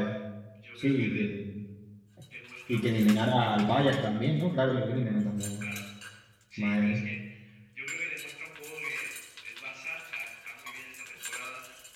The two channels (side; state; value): both; identical; correlation 1.00